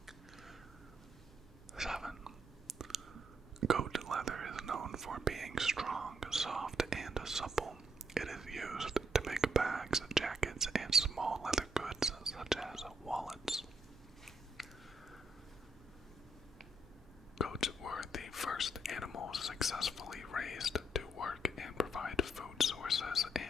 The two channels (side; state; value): both; normal; correlation 0.75